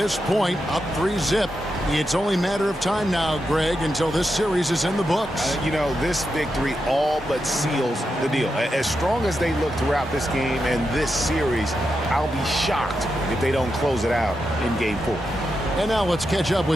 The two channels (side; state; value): both; normal; correlation 0.86